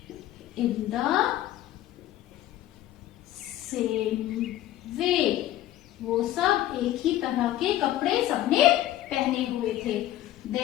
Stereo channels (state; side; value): quieter; right; 13.8 dB